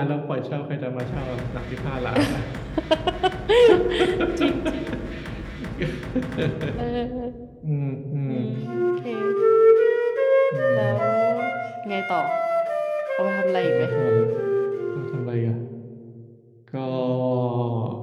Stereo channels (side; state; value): both; identical; correlation 1.00